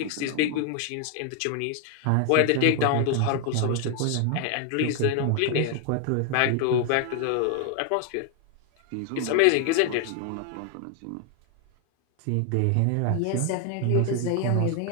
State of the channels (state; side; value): different; both; correlation 0.01